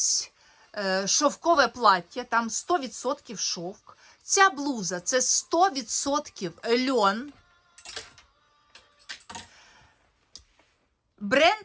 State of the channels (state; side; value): identical; both; correlation 1.00